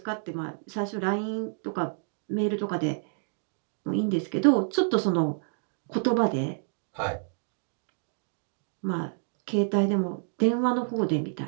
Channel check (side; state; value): left; silent; digital silence